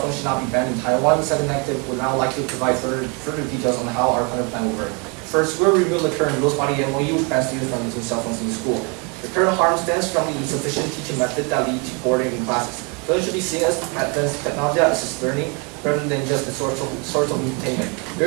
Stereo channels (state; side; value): quieter; left; 32.9 dB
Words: phones should not be banned in Taiwan. The second negative would now like to provide further details on how our current plan will work. First, we'll review the current rules-body MOU, which bans students from using cell phones in school. The current harm stems from the insufficient teaching method that lead to boredom in classes. Those should be seen as advanced technology assisted learning rather than just a source of entertainment.